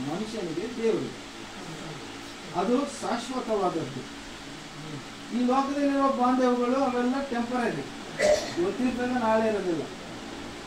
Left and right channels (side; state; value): both; identical; correlation 1.00